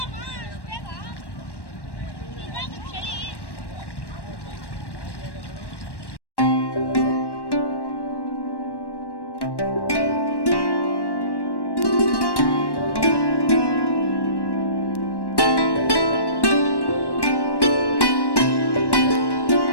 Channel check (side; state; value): right; late; 1.1 ms